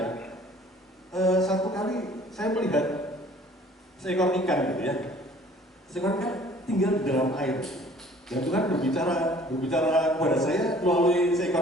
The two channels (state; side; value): normal; both; correlation 0.53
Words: Satu kali saya melihat seekor ikan gitu ya, seekor ikan tinggal di dalam air, dan Tuhan berbicara kepada saya melalui